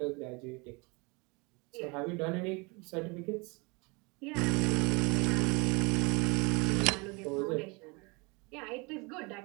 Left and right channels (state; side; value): quieter; left; 28.4 dB